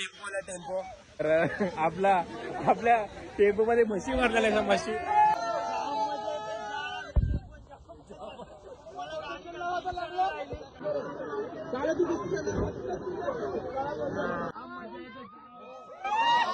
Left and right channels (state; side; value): identical; both; correlation 1.00